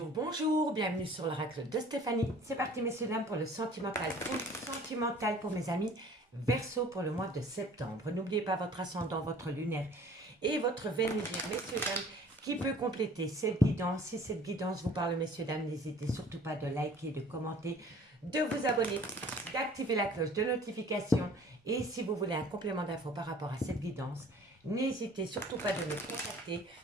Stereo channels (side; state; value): both; normal; correlation 0.50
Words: bonjour, bienvenue sur l'oracle de Stéphanie. C'est parti messieurs dames pour le sentimental pour mes amis Verseau pour le mois de septembre. N'oubliez pas votre ascendant, votre lunaire et votre Vénusien, messieurs dames, qui peut compléter cette guidance. Si cette guidance vous parle messieurs dames, n'hésitez surtout pas de liker, de commenter, de vous abonner, d'activer la cloche de notification. Et si vous voulez un complément d'infos par rapport à cette guidance, n'hésitez surtout pas de me contacter.